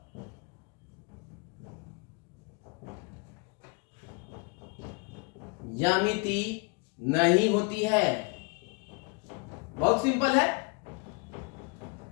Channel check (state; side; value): quieter; right; 31.3 dB